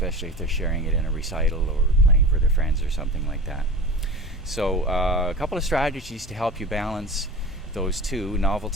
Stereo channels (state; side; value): normal; both; correlation 0.33